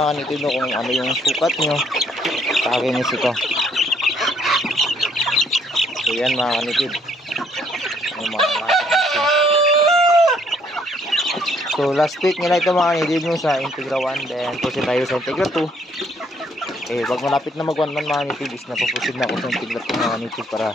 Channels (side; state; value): both; normal; correlation 0.66